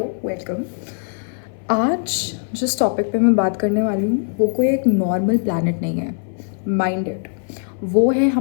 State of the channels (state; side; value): silent; right; 59 dB below the other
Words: welcome. आज जिस टॉपिक पे मैं बात करने वाली हूँ वो कोई एक नॉर्मल प्लैनेट नहीं है। माइंड इट, वो है